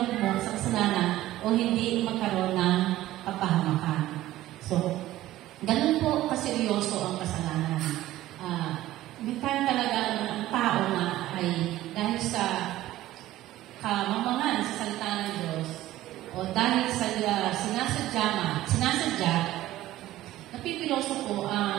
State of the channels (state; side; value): quieter; left; 15.2 dB